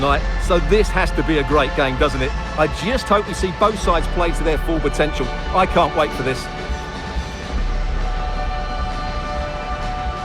so this has to be a great game, doesn't it? I just hope we see both sides play to their full potential. I can't wait for this.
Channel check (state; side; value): identical; both; correlation 1.00